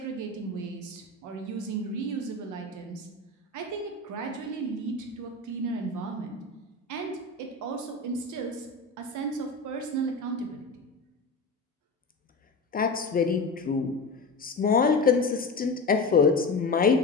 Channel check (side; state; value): right; quieter; 3.4 dB